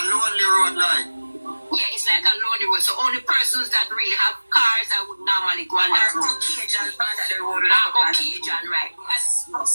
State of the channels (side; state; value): both; inverted; correlation -1.00